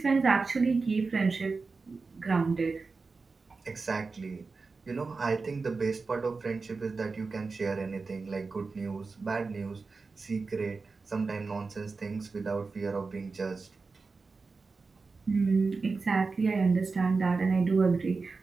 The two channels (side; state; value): left; quieter; 4.2 dB